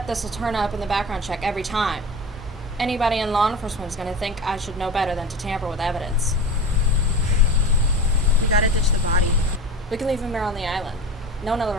this will turn up in the background check every time? Anybody in law enforcement is going to think I should know better than to tamper with evidence. We gotta ditch the body. We can leave him here on the island. No one will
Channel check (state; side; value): normal; both; correlation 0.29